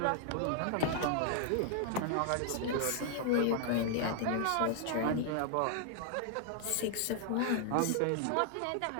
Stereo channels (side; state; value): both; different; correlation 0.00